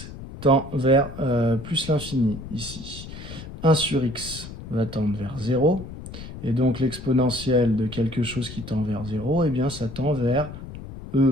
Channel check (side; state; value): left; noise; rumble, 12 dB below the sound